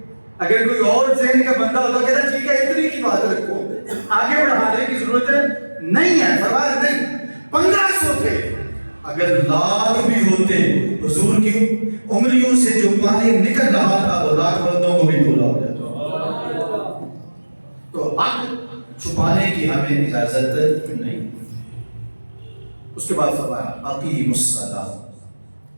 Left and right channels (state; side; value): inverted; both; correlation -1.00